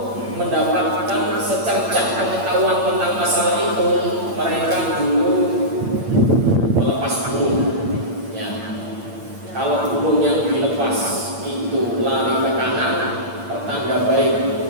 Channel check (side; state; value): left; late; 8.8 ms